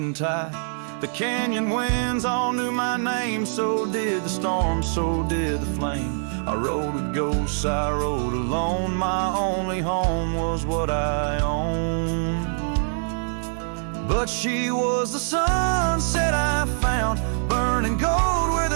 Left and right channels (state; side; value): silent; left; digital silence